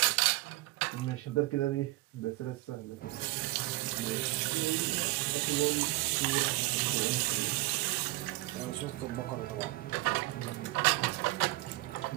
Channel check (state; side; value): quieter; left; 20.4 dB